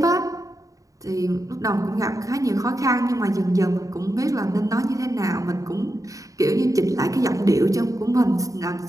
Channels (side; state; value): left; late; 0.16 ms